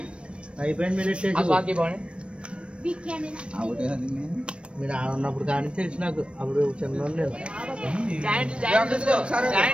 అయిపోయింది మీరు మీరు ఆడున్నప్పుడు కానీ తెలుసు నాకు అప్పుడు చిన్న నేను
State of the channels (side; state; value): left; late; 0.059 ms